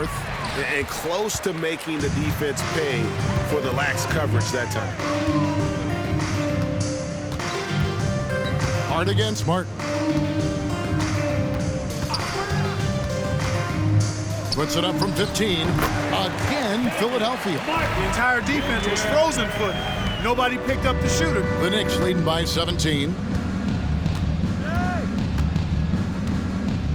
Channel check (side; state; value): both; identical; correlation 1.00